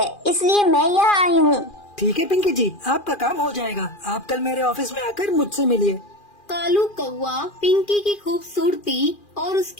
इसलिए मैं यहाँ आई हूँ। ठीक है पिंकी जी, आपका काम हो जाएगा। आप कल मेरे ऑफिस में आकर मुझसे मिलिए। कालू कौवा पिंकी की खूबसूरती और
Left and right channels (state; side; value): late; right; 2.4 ms